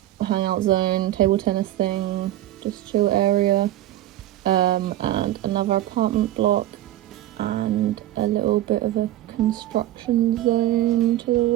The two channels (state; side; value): quieter; left; 14.2 dB